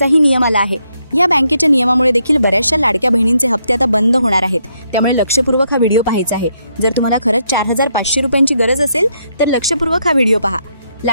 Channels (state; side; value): inverted; both; correlation -0.77